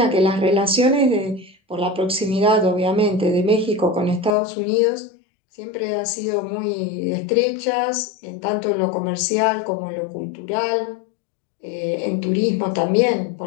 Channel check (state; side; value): drops out; right; at 4.4 s